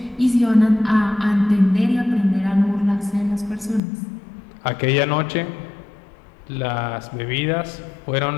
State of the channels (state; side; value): drops out; right; at 3.8 s